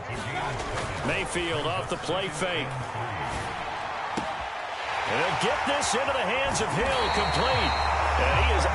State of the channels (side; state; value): both; identical; correlation 1.00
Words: Mayfield off the play fake. And they'll get this into the hands of Hill, complete. And he is